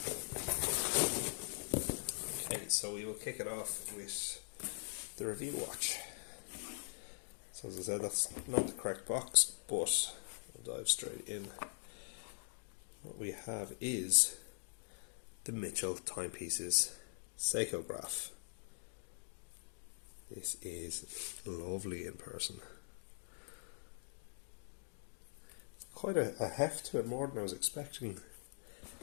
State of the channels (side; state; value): right; silent; digital silence